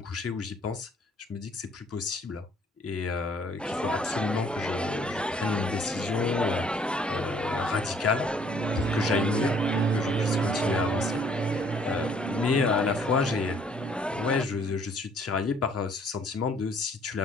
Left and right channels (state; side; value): normal; both; correlation 0.61